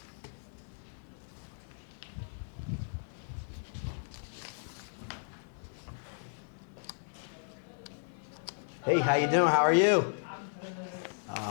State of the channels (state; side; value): silent; right; digital silence